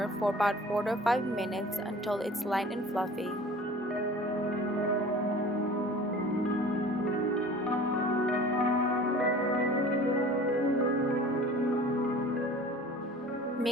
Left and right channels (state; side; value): normal; both; correlation 0.43